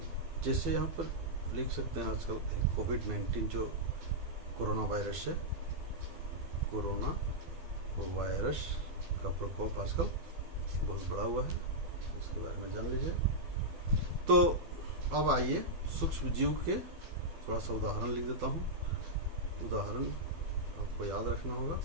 जैसे यहाँ पर लिख सकते हैं, आजकल कोविड-19 जो कोरोना वायरस है, कोरोना वायरस का प्रकोप आजकल बहुत बड़ा हुआ है, इसके बारे में जान लीजिए। तो अब आइए सूक्ष्म जीव के थोड़ा सा उदाहरण लिख देता हूँ। उदाहरण आपको याद रखना होगा,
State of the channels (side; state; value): left; late; 12 ms